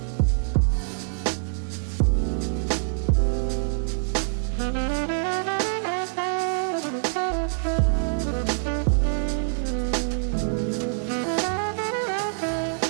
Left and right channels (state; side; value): silent; left; digital silence